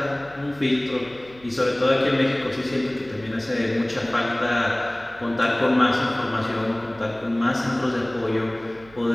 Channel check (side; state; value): right; noise; hum, 23 dB below the sound